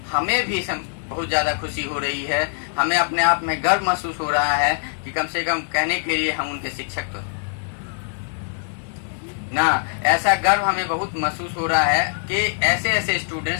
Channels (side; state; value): right; silent; digital silence